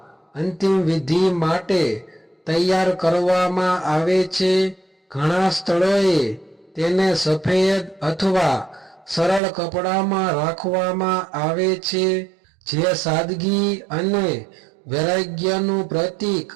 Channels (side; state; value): left; drops out; at 9.4 s